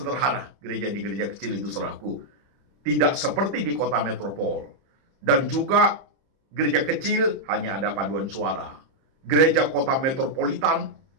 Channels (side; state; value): left; late; 30 ms